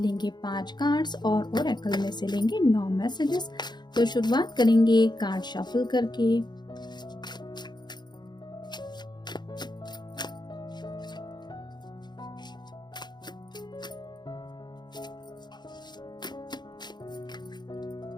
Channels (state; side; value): late; right; 0.21 ms